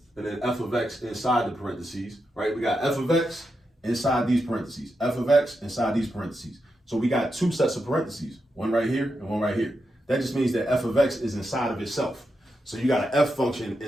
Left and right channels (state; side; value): normal; both; correlation 0.86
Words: and then f of x inside the parentheses, right? We got f of x inside these parentheses, f of x inside these parentheses. So we got two sets of parentheses, one right here and one right here. That just means that f of x is inside of itself. So you got an f function